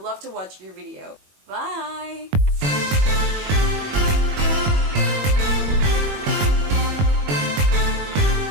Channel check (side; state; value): left; late; 21 ms